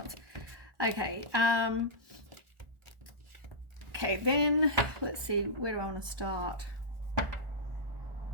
Okay. Okay, then let's see. Where do I want to start?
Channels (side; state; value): left; late; 1.4 ms